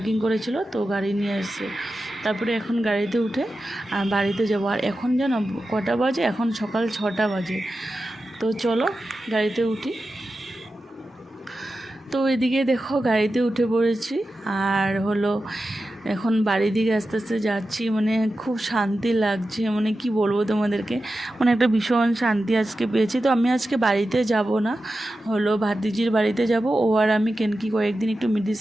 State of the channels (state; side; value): normal; both; correlation 0.92